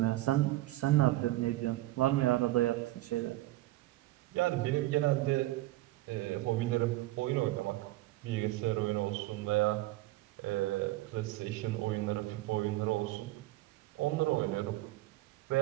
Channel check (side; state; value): left; quieter; 17.5 dB